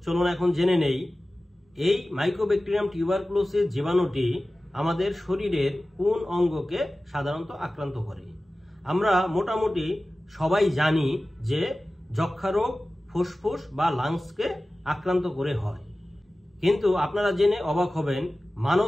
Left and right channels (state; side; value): normal; both; correlation 0.96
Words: চলুন এখন জেনে নেই এই মাইকোব্যাকটেরিয়াম টিউবারকুলোসিস জীবাণুটি আমাদের শরীরের কোন অঙ্গকে সাধারণত আক্রান্ত করে। আমরা মোটামুটি সবাই জানি যে যক্ষ্মা রোগ ফুসফুস বা লাংসকে আক্রান্ত করে হয়, কিন্তু আপনারা জেনে অবাক হবেন